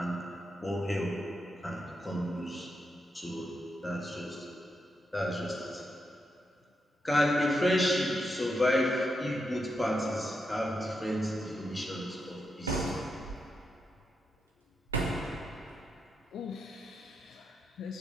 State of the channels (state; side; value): normal; both; correlation 0.84